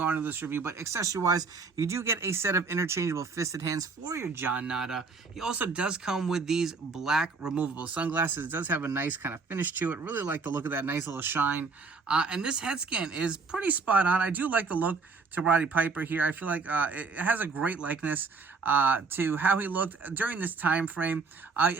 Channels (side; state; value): left; quieter; 4.5 dB